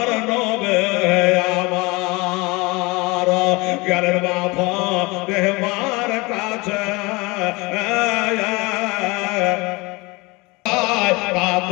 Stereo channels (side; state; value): right; quieter; 25.1 dB